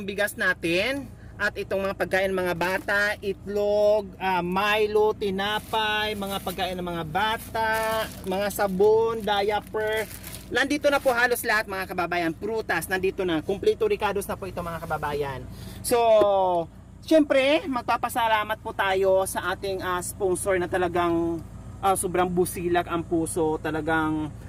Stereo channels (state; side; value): identical; both; correlation 1.00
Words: bigas natin at itong mga pagkain ng mga bata, itlog, Milo, tinapay, mga pagkain ng mga bata, mga sabon, diaper. Nandito na po halos lahat mga kababayan. Prutas, nandito na. Kompleto Ricados na po ito mga kababayan. So, siyempre, magpapasalamat po tayo sa ating sponsor na talagang sobrang busilak ang puso. Talagang